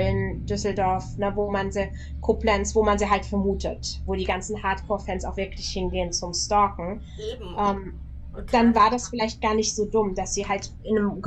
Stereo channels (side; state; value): both; identical; correlation 1.00